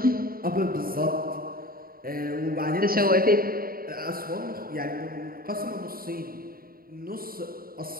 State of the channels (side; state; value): left; late; 0.43 ms